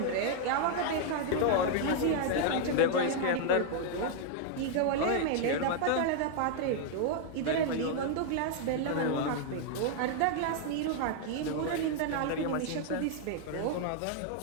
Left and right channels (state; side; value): different; both; correlation 0.00